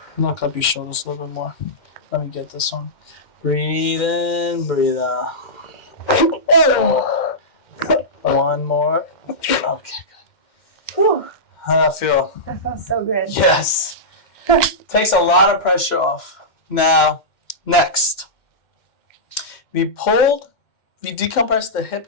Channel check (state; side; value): late; right; 2.1 ms